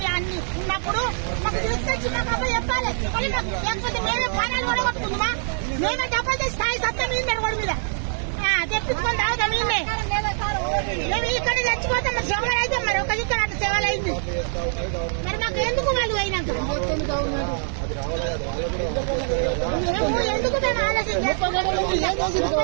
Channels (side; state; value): left; silent; 63 dB below the other